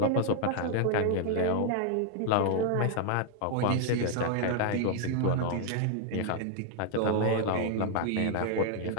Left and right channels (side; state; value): both; different; correlation 0.00